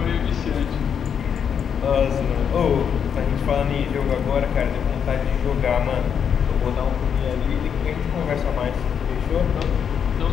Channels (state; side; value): quieter; right; 7.6 dB